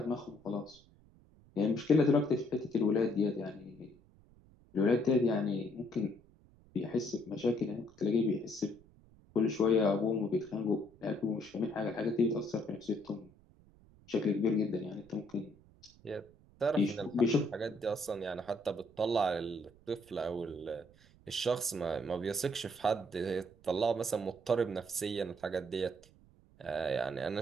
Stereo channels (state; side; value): noise; right; rumble, 27 dB below the sound